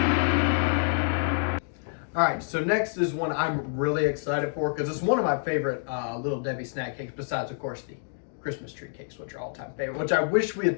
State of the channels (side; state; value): right; silent; digital silence